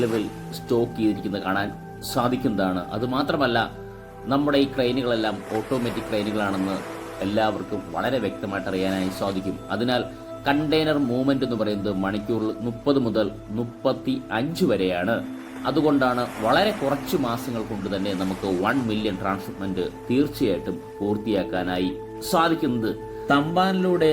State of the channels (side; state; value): both; identical; correlation 1.00